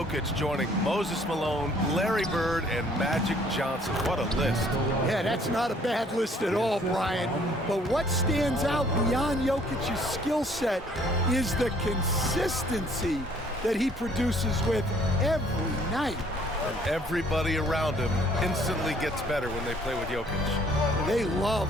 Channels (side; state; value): both; normal; correlation 0.60